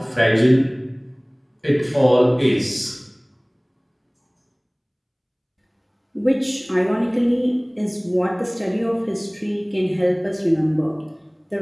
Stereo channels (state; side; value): identical; both; correlation 1.00